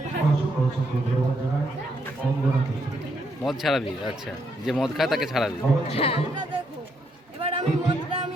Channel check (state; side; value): normal; both; correlation 0.76